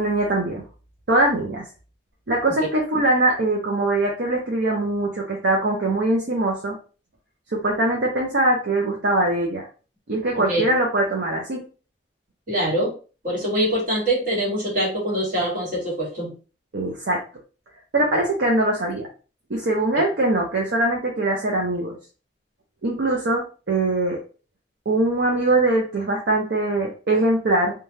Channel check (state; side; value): normal; both; correlation 0.05